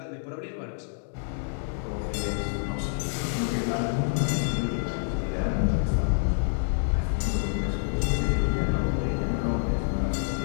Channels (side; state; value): right; silent; digital silence